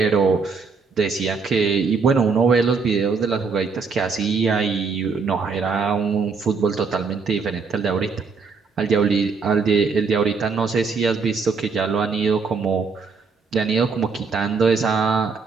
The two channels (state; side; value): quieter; left; 4.9 dB